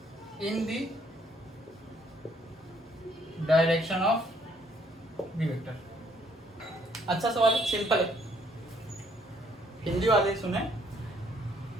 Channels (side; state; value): both; normal; correlation 0.66